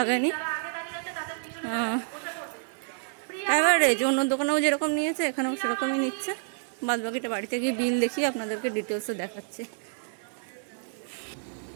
অ্যাভারেজ অন্য দোকানেও যেরকম নিয়েছে এখানেও সেরকমই নিচ্ছে। বাদ বাকিটা বাড়িতে গিয়ে বিল দেখিয়ে আপনাদেরকে ডিটেলসে দেখাচ্ছি।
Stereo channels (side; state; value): left; silent; 56 dB below the other